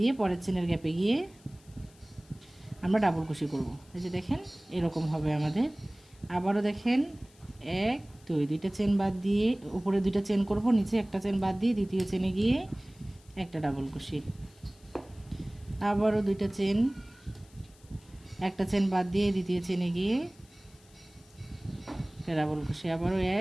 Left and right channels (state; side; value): noise; left; hiss, 28 dB below the sound